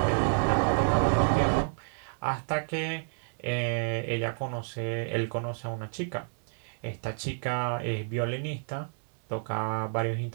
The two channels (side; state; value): left; silent; digital silence